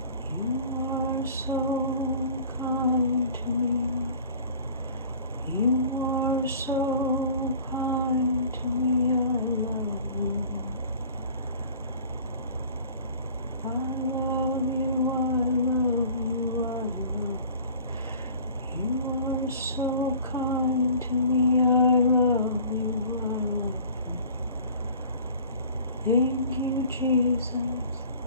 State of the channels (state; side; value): inverted; both; correlation -0.46